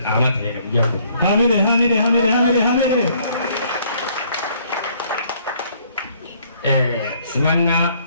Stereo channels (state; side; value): inverted; both; correlation -0.63